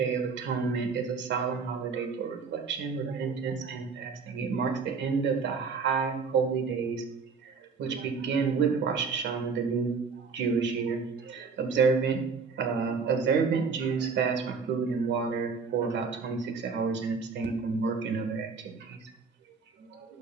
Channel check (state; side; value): quieter; left; 5.1 dB